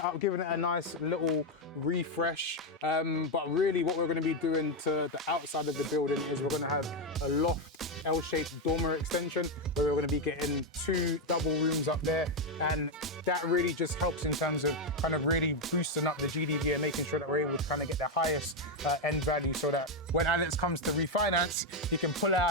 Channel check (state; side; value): normal; both; correlation 0.05